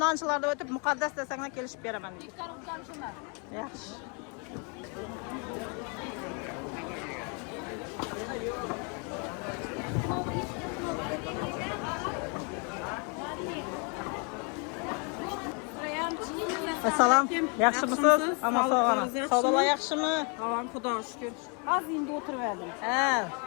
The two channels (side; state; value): right; quieter; 35.6 dB